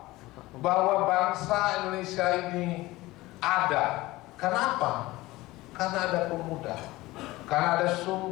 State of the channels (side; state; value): right; quieter; 19.1 dB